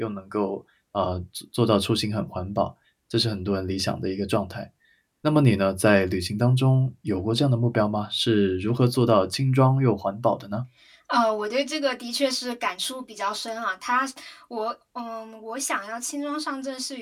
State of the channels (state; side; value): identical; both; correlation 1.00